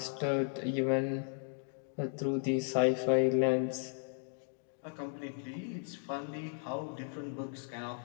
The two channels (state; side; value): silent; right; 54 dB below the other